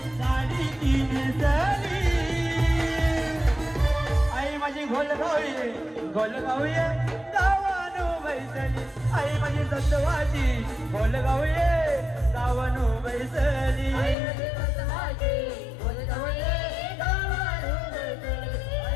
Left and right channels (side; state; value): right; drops out; at 14.2 s